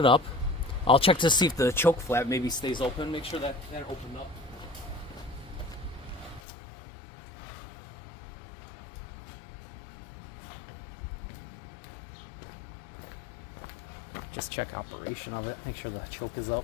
up. I'll check to see if the choke flap maybe stays open. Make sure that opened up. Just check operation of it. Make sure the choke is up.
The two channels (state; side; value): drops out; right; at 6.4 s